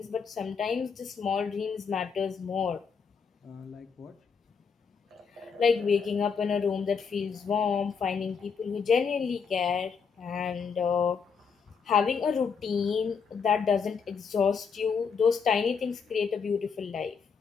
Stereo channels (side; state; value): right; quieter; 5.9 dB